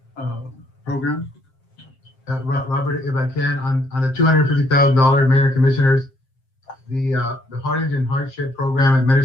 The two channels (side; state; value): right; late; 7.5 ms